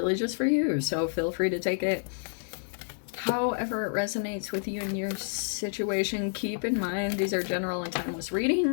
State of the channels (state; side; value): silent; right; digital silence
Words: just for you, so feel free to take it however it resonates with you and your situation. Keep in mind, these are general and timeless